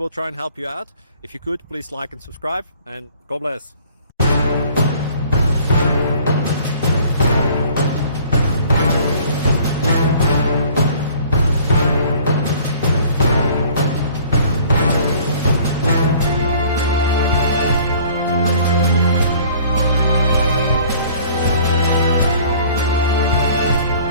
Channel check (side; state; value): both; inverted; correlation -0.53